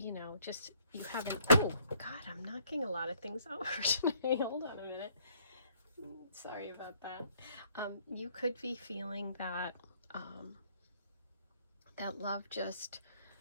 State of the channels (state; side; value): inverted; both; correlation -0.63